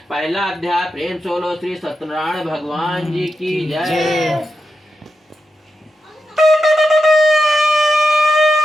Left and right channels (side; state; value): both; normal; correlation 0.88